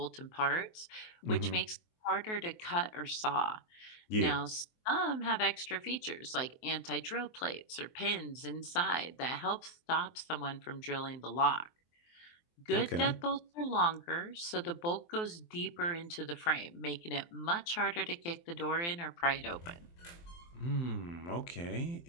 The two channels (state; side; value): late; right; 23 ms